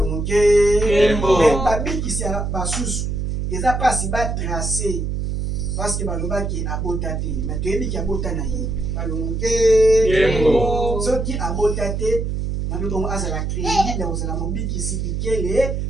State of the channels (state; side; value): noise; right; hum, 2 dB below the sound